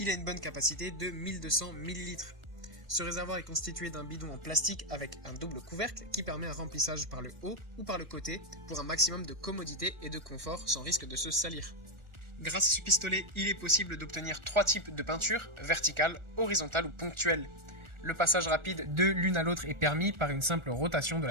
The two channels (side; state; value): left; late; 1.4 ms